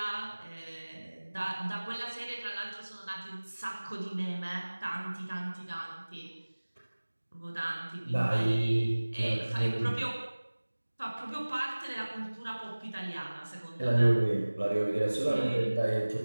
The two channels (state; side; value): inverted; both; correlation -1.00